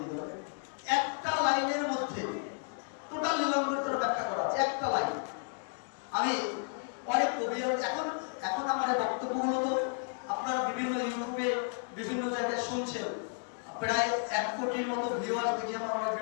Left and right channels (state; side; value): silent; right; 55 dB below the other